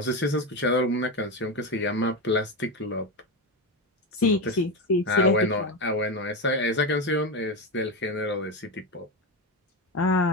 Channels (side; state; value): both; normal; correlation 0.15